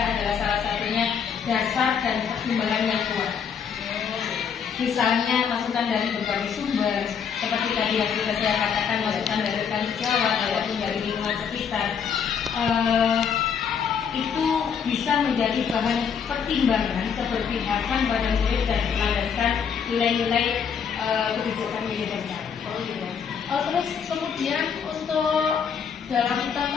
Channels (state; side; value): quieter; right; 7.0 dB